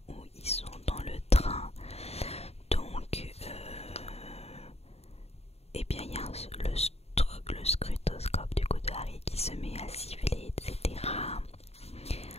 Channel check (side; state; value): right; late; 0.30 ms